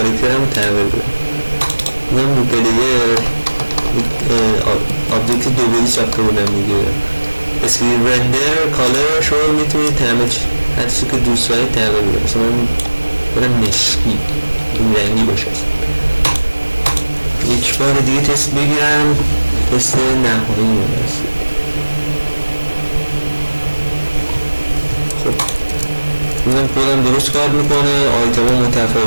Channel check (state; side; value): inverted; both; correlation -1.00